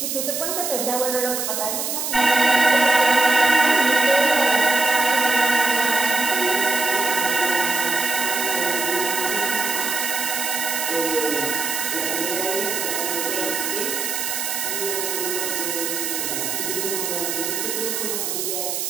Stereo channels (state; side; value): noise; right; hiss, 2 dB below the sound